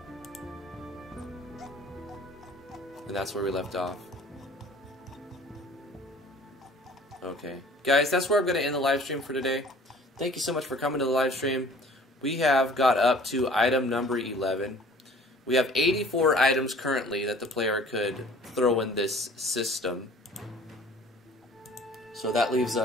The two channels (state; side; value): normal; both; correlation 0.50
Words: And that's where we left off. Okay. Guys, that's where I'm going to end the live stream for today. Thank you so much for coming to the live stream. We have got up to item number 11. We have 84 items currently that the player could throw in this system. So that leaves